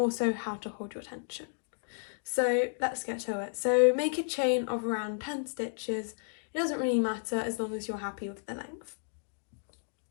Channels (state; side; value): silent; right; digital silence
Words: how to hold your tension. So let's get to it. So make a chain of around 10 stitches. It doesn't really matter as long as you're happy with the length.